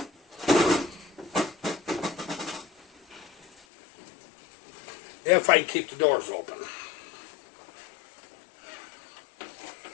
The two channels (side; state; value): right; drops out; at 3.5 s